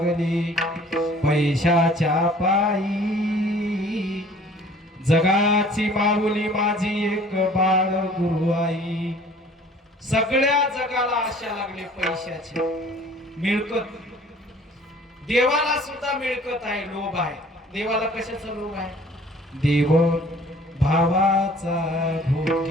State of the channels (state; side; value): normal; both; correlation 0.52